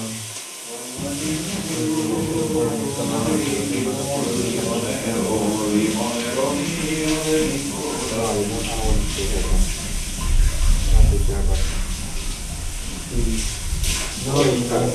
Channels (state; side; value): identical; both; correlation 1.00